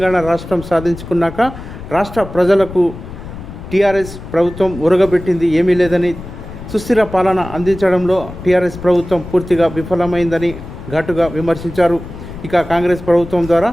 రాష్ట్రం సాధించుకున్నాక రాష్ట్ర ప్రజలకు టీఆర్ఎస్ ప్రభుత్వం ఉరగబెట్టింది ఏమీ లేదని, సుస్థిర పాలన అందించడంలో టీఆర్ఎస్ ప్రభుత్వం పూర్తిగా విఫలమైందని ఘాటుగా విమర్శించారు. ఇక కాంగ్రెస్ ప్రభుత్వం ద్వారా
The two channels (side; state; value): left; noise; rumble, 12 dB below the sound